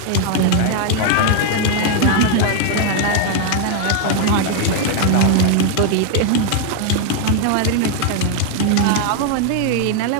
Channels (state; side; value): different; both; correlation 0.00